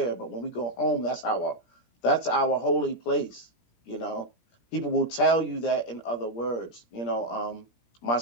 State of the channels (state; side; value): late; right; 17 ms